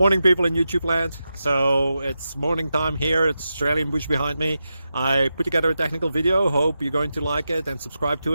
people in YouTube land. So it's morning time here. It's Australian bush behind me. I put together a technical video. Hope you're going to like it and subscribe to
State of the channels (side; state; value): both; inverted; correlation -0.89